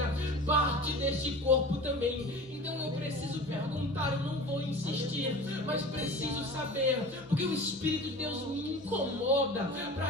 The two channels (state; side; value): normal; both; correlation 0.37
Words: parte deste corpo também. Então eu preciso perguntar, eu não vou insistir, mas preciso saber, porque o Espírito de Deus me incomoda